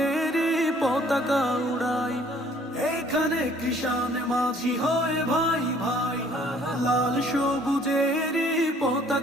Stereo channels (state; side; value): normal; both; correlation 0.59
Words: পতাকা উড়াই। এইখানে কৃষাণ মাঝি হয়ে ভাই ভাই লাল সবুজেরই